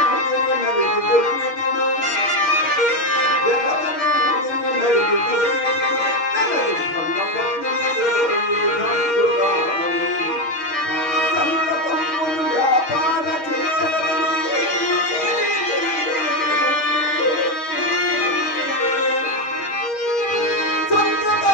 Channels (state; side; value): late; right; 6.4 ms